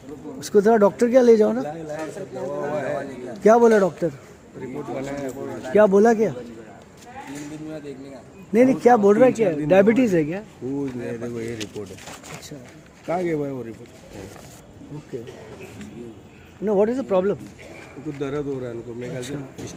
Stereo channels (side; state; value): both; identical; correlation 1.00